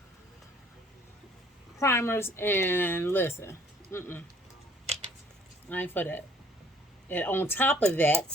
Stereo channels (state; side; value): normal; both; correlation 0.58